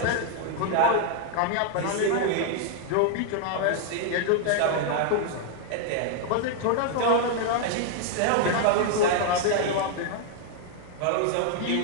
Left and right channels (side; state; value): both; different; correlation 0.00